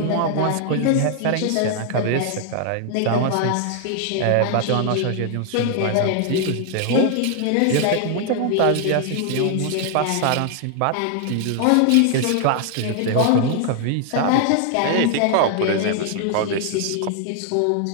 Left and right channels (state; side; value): different; both; correlation 0.00